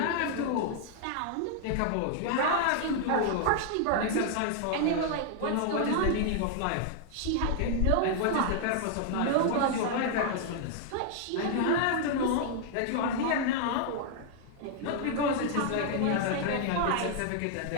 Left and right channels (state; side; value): different; both; correlation 0.00